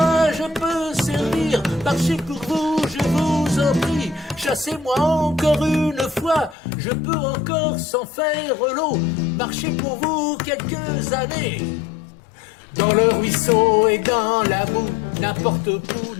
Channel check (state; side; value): drops out; right; at 6.6 s